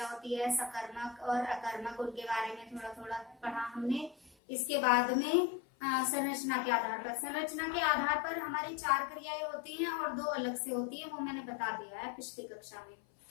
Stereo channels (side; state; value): right; drops out; at 4.4 s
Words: होती है, सकर्मक और अकर्मक, उनके बारे में थोड़ा थोड़ा पढ़ा हमने। इसके बाद में संरचना के आधार पर, संरचना के आधार पर हमारी 4 क्रियाएं होती हैं और 2 अलग से होती है, वो मैंने बता दिया है पिछली कक्षा में।